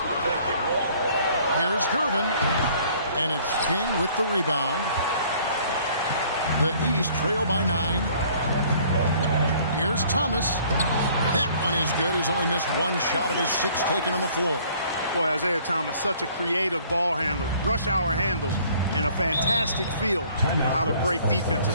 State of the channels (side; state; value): both; inverted; correlation -0.57